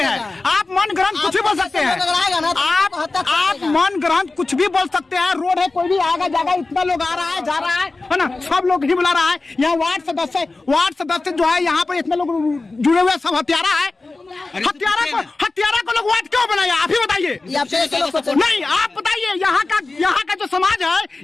आप मन ग्रहण कुछ भी बोल सकते हैं। आप मन ग्रहण कुछ भी बोल सकते हैं। रोड है, कोई भी आएगा जाएगा, इतना लोग आ रहा है जा रहा है ना, सब लोग ही बुला रहा है। यहाँ वार्ड सदस्य जो है, यहाँ पर इतने लोग जुड़े हुए, सब हत्यारा है। हत्यारा को लोग वार्ड क्यों बनाया? आप ही बताइए। नहीं, आप बताइए। यहाँ का जो समाज है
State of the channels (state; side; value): quieter; right; 3.4 dB